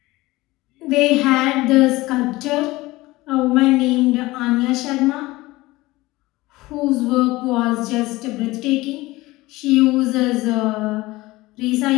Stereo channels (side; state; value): right; quieter; 19.7 dB